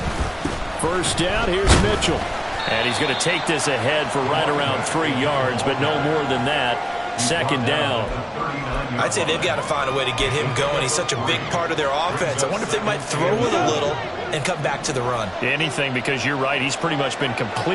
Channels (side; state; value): both; identical; correlation 1.00